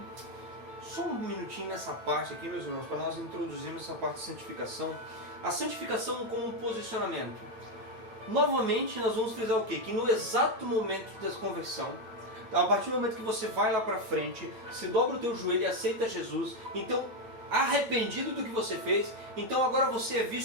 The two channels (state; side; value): late; left; 9.1 ms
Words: Só um minutinho nessa parte aqui, meus irmãos, para nós introduzirmos essa parte de santificação. A santificação como um posicionamento. Novamente, nós vamos frisar o quê? Que no exato momento da conversão, a partir do momento que você vai lá para frente, se dobra o teu joelho e aceita Jesus, então, arrependido do que você fez, então agora você é